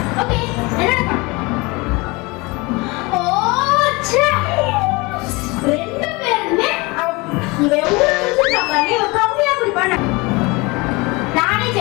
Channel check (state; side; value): quieter; right; 25.1 dB